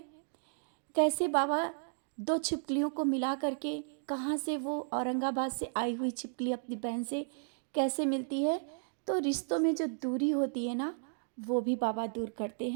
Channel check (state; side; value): silent; left; digital silence